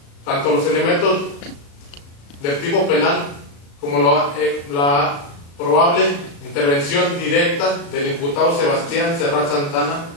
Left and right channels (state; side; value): late; right; 35 ms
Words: tanto los elementos del tipo penal como la probable intervención directa del imputado Sebastián Serrat Santana